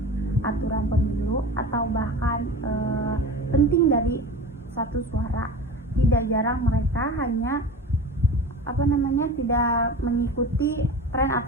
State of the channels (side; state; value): both; normal; correlation 0.33